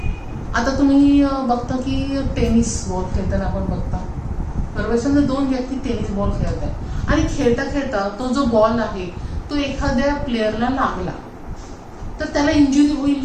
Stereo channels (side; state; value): both; identical; correlation 1.00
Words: आता तुम्ही बघता की टेनिस बॉल खेळताना आपण बघता, बरोबर. समजा दोन व्यक्ती टेनिस बॉल खेळत आहे आणि खेळता खेळता तो जो बॉल आहे तो एखाद्या प्लेअरला लागला तर त्याला इंजुरी